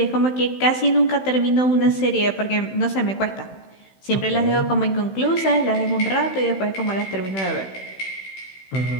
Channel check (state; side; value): late; right; 16 ms